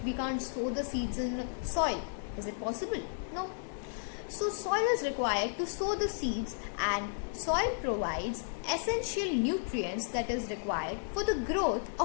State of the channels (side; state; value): right; silent; digital silence